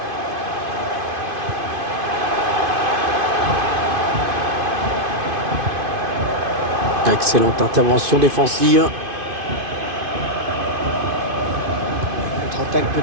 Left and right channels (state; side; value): late; left; 2.5 ms